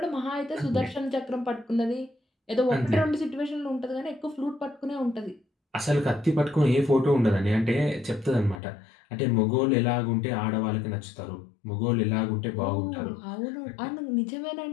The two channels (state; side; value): drops out; right; at 8.6 s